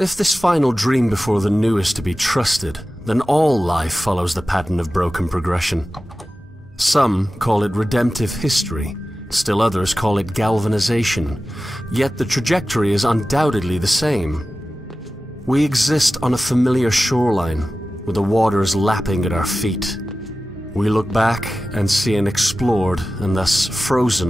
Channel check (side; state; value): both; normal; correlation 0.95